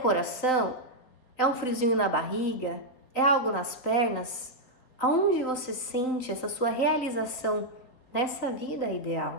É um friozinho na barriga? É algo nas pernas? Aonde você sente essa sua realização nessa vida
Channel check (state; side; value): late; right; 4.0 ms